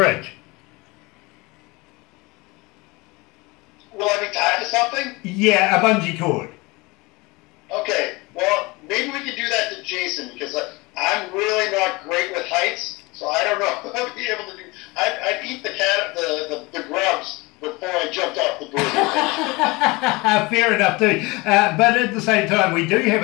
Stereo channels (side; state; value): right; quieter; 24.2 dB